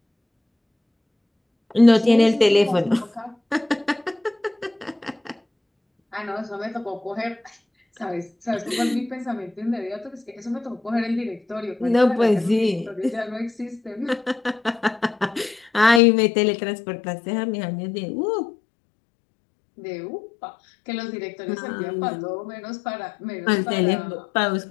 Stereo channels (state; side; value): drops out; right; at 16.0 s